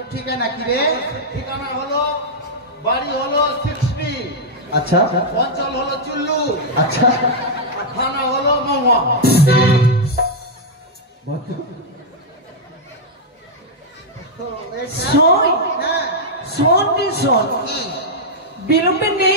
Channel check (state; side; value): normal; both; correlation -0.04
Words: ঠিকানা কি রে? ঠিকানা হলো, বাড়ি হলো 60, আচ্ছা অঞ্চল হলো চুল্লু, আচ্ছা আর থানা হলো মহুয়া। শোন শোন রে শোন, বিলম্বে